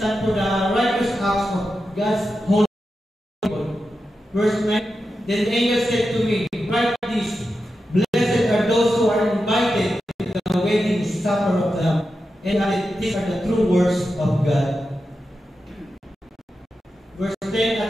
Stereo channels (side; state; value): both; normal; correlation 0.90